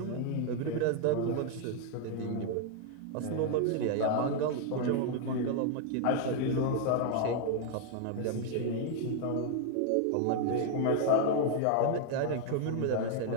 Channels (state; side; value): different; both; correlation 0.00